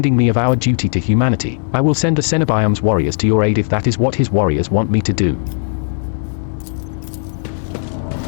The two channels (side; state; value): right; silent; 63 dB below the other